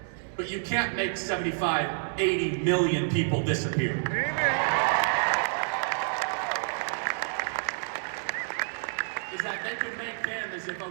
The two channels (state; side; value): silent; left; 59 dB below the other